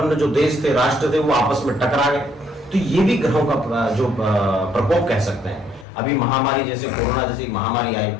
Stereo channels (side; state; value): right; drops out; at 5.9 s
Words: जो देश थे, राष्ट्र थे, वो आपस में टकरा गए, तो ये भी ग्रहों का जो प्रकोप कह सकते हैं। अभी महामारी जैसे कोरोना जैसी महामारी आई,